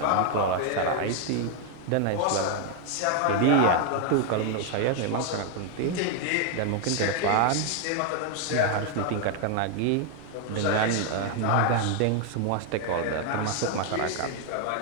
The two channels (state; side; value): different; both; correlation 0.00